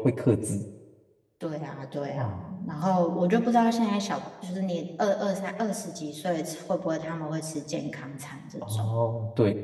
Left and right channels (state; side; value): identical; both; correlation 1.00